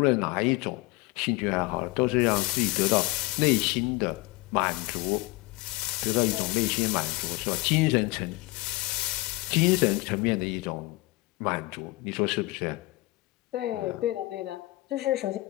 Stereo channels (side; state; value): right; quieter; 21.4 dB